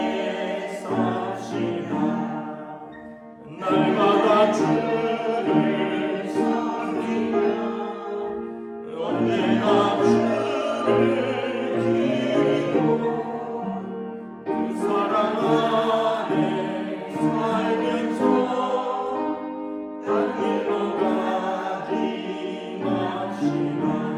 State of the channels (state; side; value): identical; both; correlation 1.00